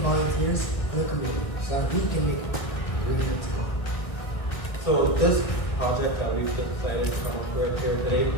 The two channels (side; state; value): right; late; 1.7 ms